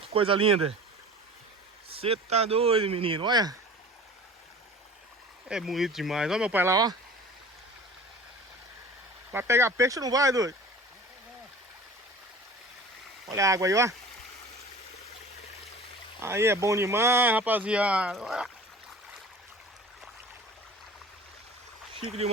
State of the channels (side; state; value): both; normal; correlation 0.41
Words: coisa linda. Você tá doido, menino, olha. É bonito demais, ó meu pai lá, ó. Vai pegar peixe ou não vai, doido? Olha a água aí, ó. Aí é bom demais, rapaziada. Olha. Chique